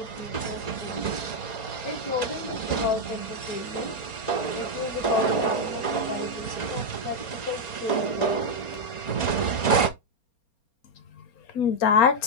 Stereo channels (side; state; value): right; late; 4.3 ms